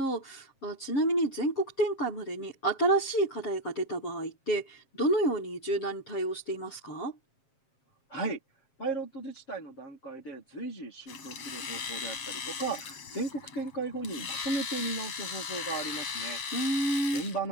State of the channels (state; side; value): late; right; 7.4 ms